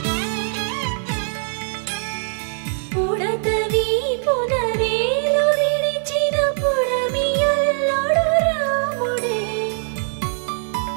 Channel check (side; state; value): left; silent; digital silence